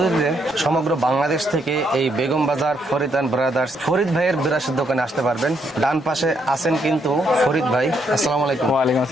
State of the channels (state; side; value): normal; both; correlation 0.75